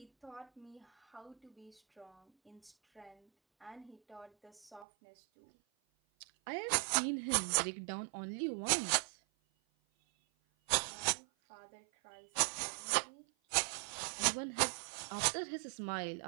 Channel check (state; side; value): drops out; left; at 4.9 s